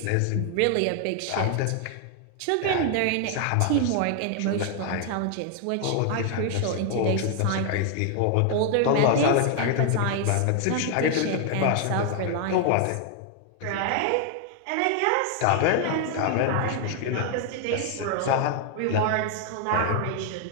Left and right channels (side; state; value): both; different; correlation 0.00